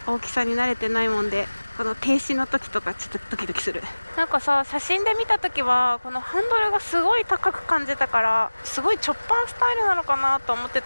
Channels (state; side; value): inverted; both; correlation -1.00